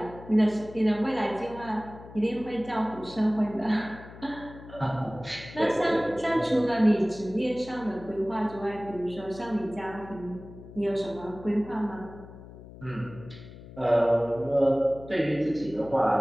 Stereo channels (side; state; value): left; noise; hum, 17 dB below the sound